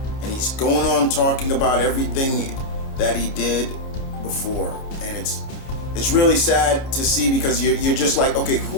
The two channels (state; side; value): late; right; 30 ms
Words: and he's going on talking about everything that he did before, and it's really sad to see, because you're just like, okay,